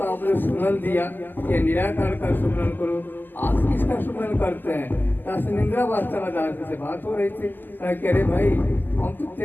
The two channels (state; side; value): late; right; 0.089 ms